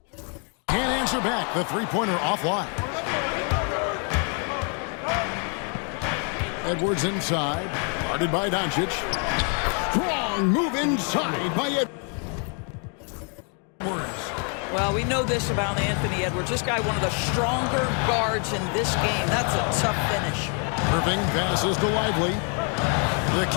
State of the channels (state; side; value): quieter; right; 40.0 dB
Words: can't answer back. The 3-pointer offline. Edwards inside. Guarded by Doncic. Strong move inside by Edwards. Well, we know this about Anthony Edwards. This guy, one of the stronger guards in this game. That's a tough finish. Irving passes to Lively. The